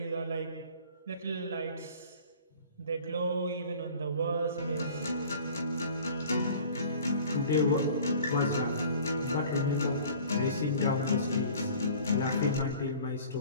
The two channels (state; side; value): inverted; both; correlation -0.47